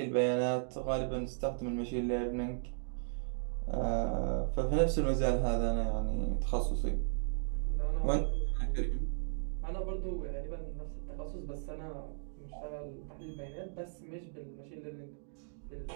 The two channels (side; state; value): left; silent; digital silence